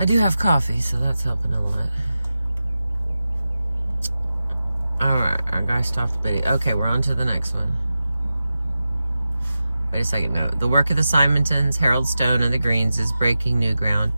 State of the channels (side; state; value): both; inverted; correlation -0.93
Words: do have coffee, so that's helping a lot. Alright, our guy stopped the video. Okay, we're on to the next one. Wait a second, no. The work of the Simontons, Harold Stone, and the Greens is breaking new ground